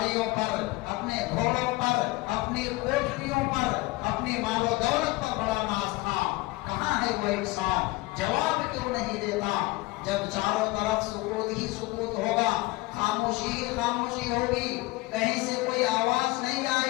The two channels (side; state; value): right; quieter; 21.2 dB